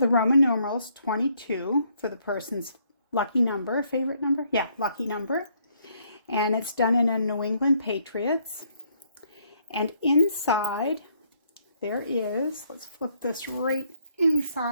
Roman numerals 22 for the person's lucky number, favorite number? Yeah, lucky number. And it's done in a New England Patriots. And inside there is, let's flip this right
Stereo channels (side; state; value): both; inverted; correlation -0.69